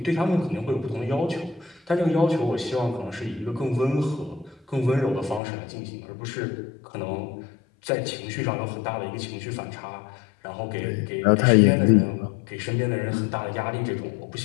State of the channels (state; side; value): drops out; right; at 5.4 s